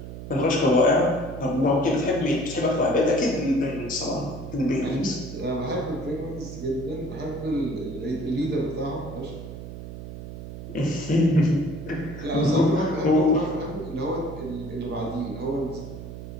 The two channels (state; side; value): noise; right; hum, 10 dB below the sound